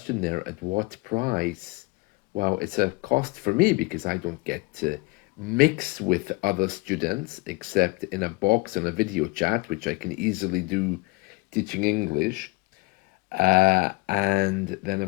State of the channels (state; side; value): quieter; right; 24.9 dB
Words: there, at what price? Well, it's a cost for me because I don't get to mix with other students except in a box on a video chat, which I can easily do teaching English. And then,